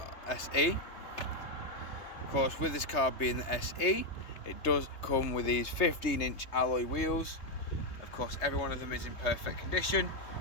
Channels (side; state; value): right; late; 3.3 ms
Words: Of course, with this car being the SE, it does come with these 15-inch alloy wheels. Of course, every one of them is in perfect condition.